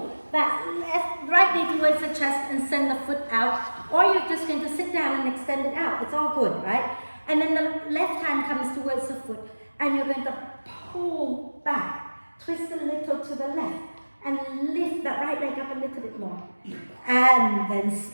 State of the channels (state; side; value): inverted; both; correlation -1.00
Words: that right knee towards the chest and send the foot out. Or you're just going to sit down and extend it out. It's all good, right? And then the left hand comes towards the foot and you're going to pull back. Twist a little to the left. and lift that right leg up a little bit more. And then